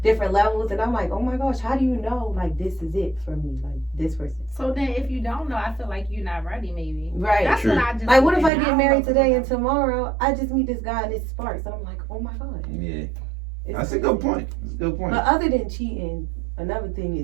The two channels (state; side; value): drops out; left; at 8.5 s